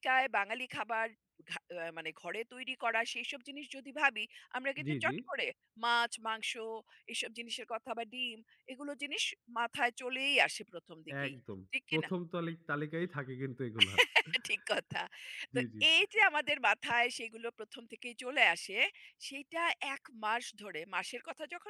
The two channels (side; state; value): both; identical; correlation 1.00